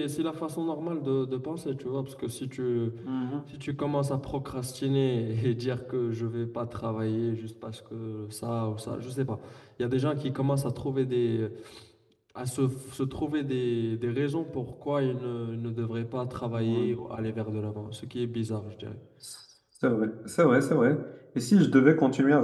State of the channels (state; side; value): identical; both; correlation 1.00